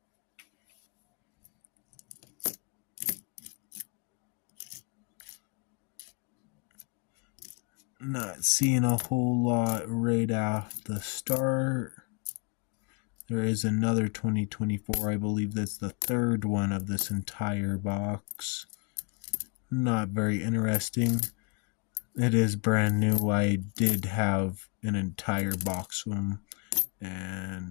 Not seeing a whole lot right off the start. There is another 2024. I believe that's the third one of this entire box. Not very interesting. It is brand new. I did have an entire box of them,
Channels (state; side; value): quieter; right; 35.0 dB